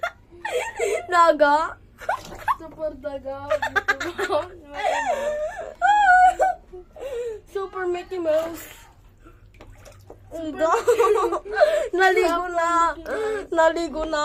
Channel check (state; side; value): identical; both; correlation 1.00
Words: Daga. Super daga. Super Mickey Mouse. Naligo na. Naligo